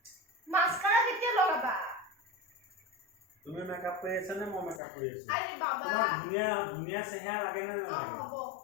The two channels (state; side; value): drops out; right; at 4.8 s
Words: মাস্কাৰা কেতিয়া লগাবা তুমি মেকআপ কৰি আছা নে মই মেকআপ কৰি আছো আৰে বাবা তোমাক ধুনীয়া চেহেৰা লাগে নে নালাগে হ'ব